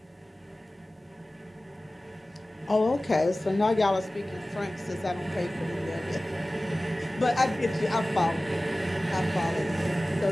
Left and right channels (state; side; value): normal; both; correlation 0.97